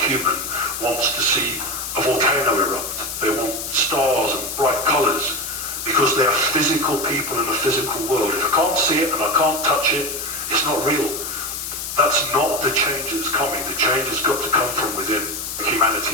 wants to see a volcano erupt. They want stars and bright colours because they are physical people in a physical world. If I can't see it and I can't touch it, it's not real. That's not the change that's coming. The change has got to come from within. Humanity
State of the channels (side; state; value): left; noise; hiss, 6 dB below the sound